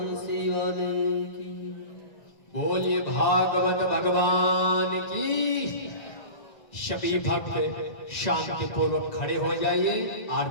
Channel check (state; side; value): late; right; 1.9 ms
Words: वाले की। बोलिए भागवत भगवान की। सभी भक्त शांति पूर्वक खड़े हो जाइए,